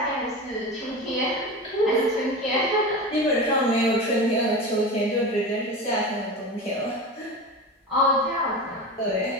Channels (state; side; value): normal; both; correlation 0.27